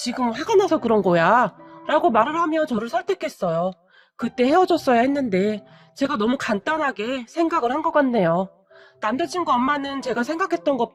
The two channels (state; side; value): identical; both; correlation 1.00